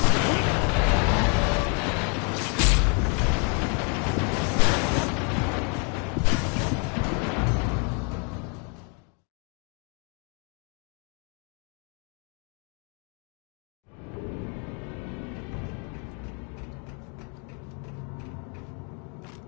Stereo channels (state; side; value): quieter; right; 37.3 dB